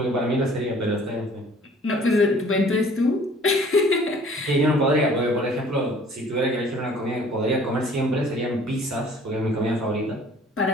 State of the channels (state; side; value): normal; both; correlation 0.53